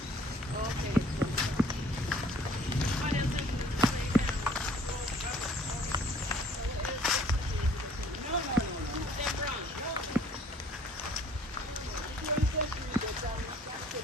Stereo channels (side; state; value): both; normal; correlation 0.56